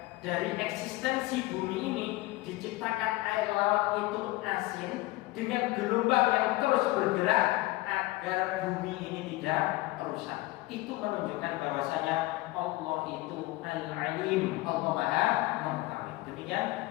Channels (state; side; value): quieter; right; 19.9 dB